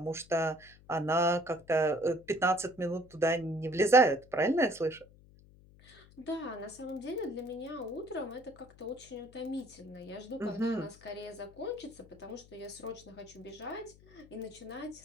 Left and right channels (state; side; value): noise; left; hum, 24 dB below the sound